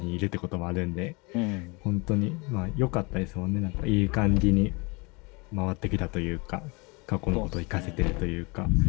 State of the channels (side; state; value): right; quieter; 28.1 dB